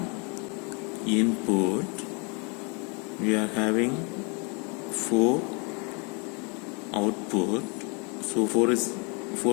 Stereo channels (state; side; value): quieter; right; 33.5 dB